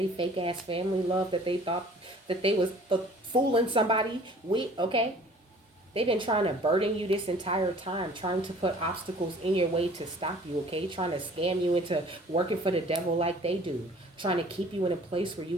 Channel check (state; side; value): normal; both; correlation 0.51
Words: fake ass family love that they thought that they was fooling somebody with, okay? They've been trying to burden you this entire time, trying to put obstacles in your way to stop you, okay? Trying to scam you into working for the devil like they do. Trying to keep you in a place where you